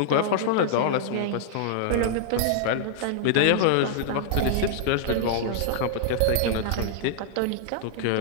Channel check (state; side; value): different; both; correlation -0.01